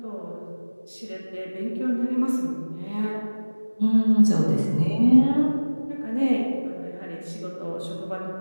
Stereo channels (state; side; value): inverted; both; correlation -1.00